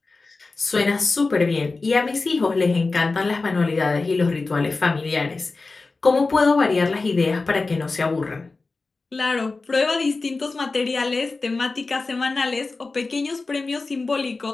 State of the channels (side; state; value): right; quieter; 3.7 dB